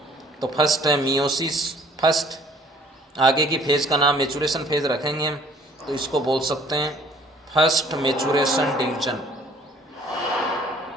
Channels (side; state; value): both; normal; correlation 0.56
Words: तो फर्स्ट है मियोसिस, फर्स्ट। आगे की फेज का नाम मेचुरेशन फेज रखेंगे हम, तो इसको बोल सकते हैं फर्स्ट मेचुरेशन डिवीजन,